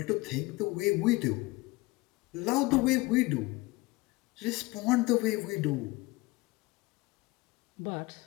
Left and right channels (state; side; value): quieter; right; 22.4 dB